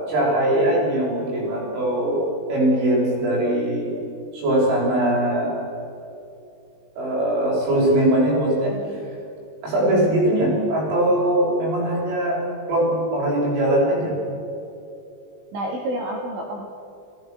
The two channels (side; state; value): left; late; 20 ms